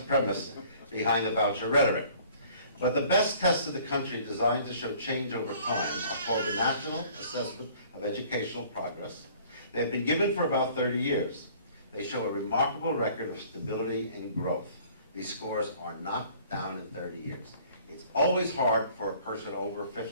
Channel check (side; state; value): both; inverted; correlation -0.54